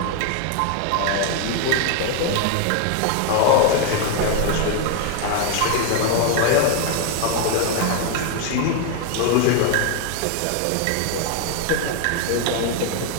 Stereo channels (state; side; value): different; both; correlation 0.01